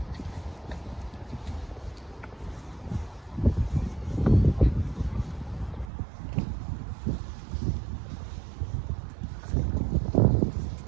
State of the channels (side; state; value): left; drops out; at 5.9 s